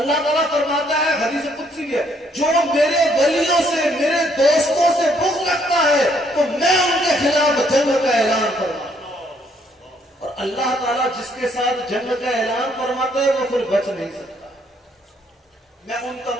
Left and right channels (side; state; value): both; normal; correlation 0.68